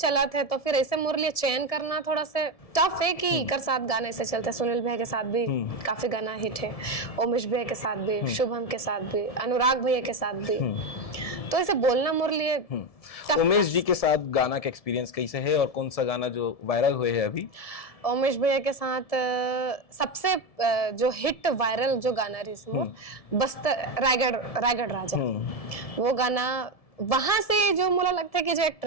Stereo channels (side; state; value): right; late; 1.7 ms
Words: था तो फिर ऐसे मोर लिए चयन करना थोड़ा सा टफ है कि कर साथ गाने ऐसे चलते हैं। सुनील भैया के साथ भी काफी गाना हिट है, उमेश भैया के साथ भी, शुभम के साथ भी, अनुराग भैया के साथ भी, तो ऐसे बोलना मोर लिए। उमेश जी के साथ गाना का एक्सपीरियंस कैसे है और कौन सा गाना जो वायरल हुए है अभी? उमेश भैया के साथ सबसे जो हिट वायरल जो गाना रही बस्तर रायगढ़ राजा, वो गाना वहां से जो मुझे लगता है कि जो एक